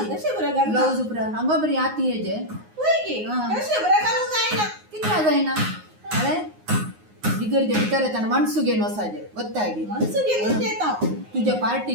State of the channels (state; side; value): late; left; 9.6 ms